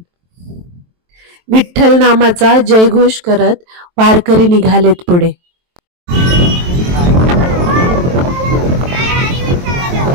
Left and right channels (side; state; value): left; late; 23 ms